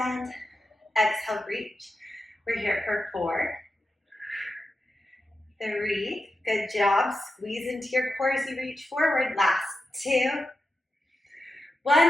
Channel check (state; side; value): normal; both; correlation 0.90